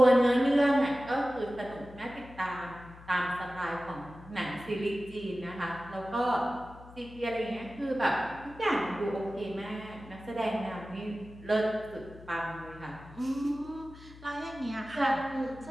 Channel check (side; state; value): left; noise; hum, 19 dB below the sound